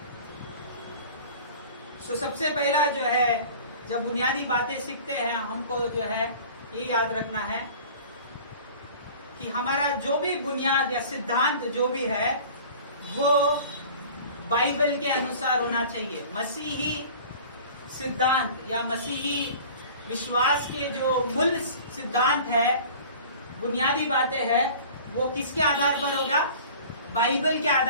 तो सबसे पहला जो है जब बुनियादी बातें सीखते हैं हमको जो है ये याद रखना है कि हमारा जो भी बुनियाद या सिद्धांत जो भी है वो बाइबल के अनुसार होना चाहिए। मसीही सिद्धांत या मसीही विश्वास के जो मूल सिद्धांत है, बुनियादी बातें हैं, वो किसके आधार पर होगा? बाइबल के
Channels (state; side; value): inverted; both; correlation -0.43